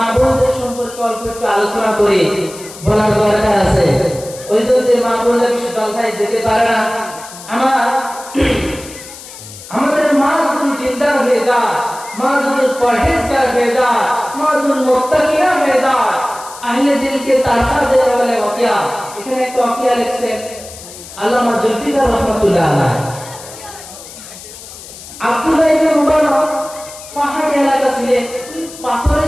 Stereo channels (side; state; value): left; noise; hiss, 16 dB below the sound